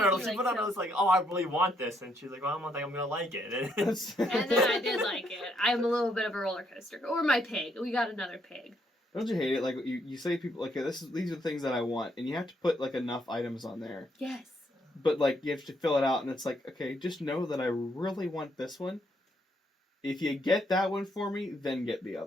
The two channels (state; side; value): normal; both; correlation 0.73